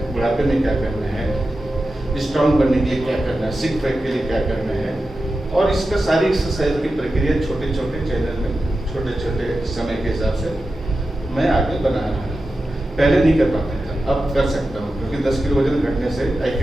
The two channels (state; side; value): normal; both; correlation 0.92